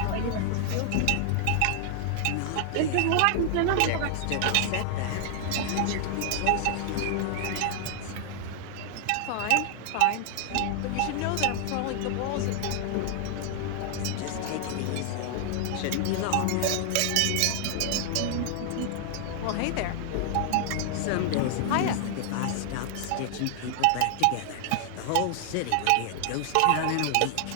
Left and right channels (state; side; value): different; both; correlation 0.00